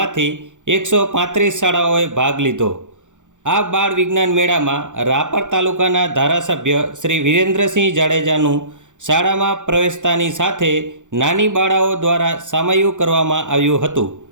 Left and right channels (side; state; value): left; late; 0.86 ms